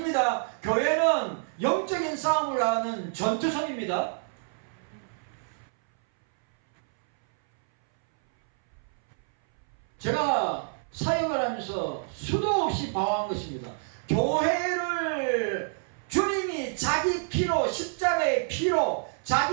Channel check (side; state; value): left; silent; 59 dB below the other